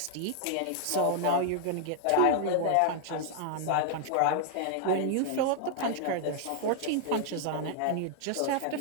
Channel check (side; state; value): both; different; correlation -0.01